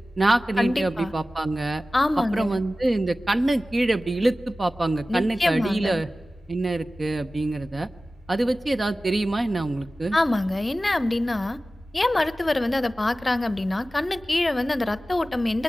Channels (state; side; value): normal; both; correlation 0.96